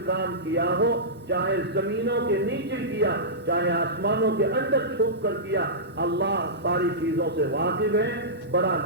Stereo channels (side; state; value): both; normal; correlation -0.15